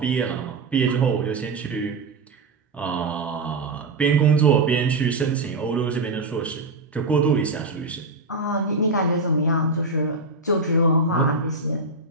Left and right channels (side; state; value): left; quieter; 3.4 dB